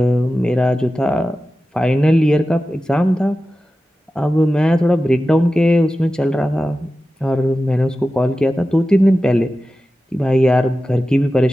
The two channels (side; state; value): both; normal; correlation 0.94